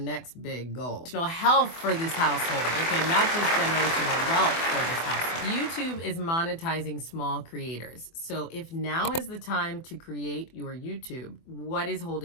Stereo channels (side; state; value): right; late; 24 ms